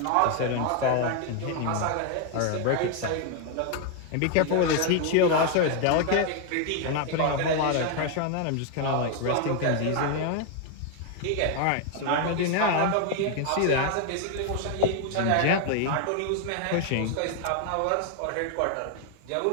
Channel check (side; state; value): both; different; correlation 0.01